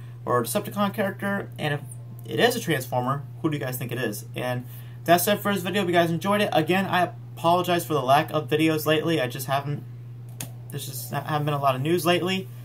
or a Decepticon character? And if it is a Transformer, who do you guys think it is? And that's it for this video. If you guys enjoyed it, again, I apologize for the lack of videos lately. There's just haven't been a lot of news lately.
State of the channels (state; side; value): identical; both; correlation 1.00